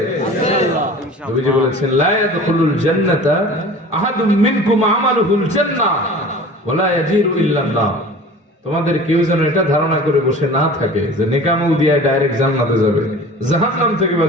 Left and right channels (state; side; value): normal; both; correlation 0.41